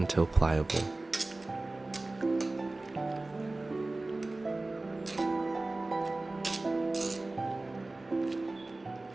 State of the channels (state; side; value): quieter; left; 3.0 dB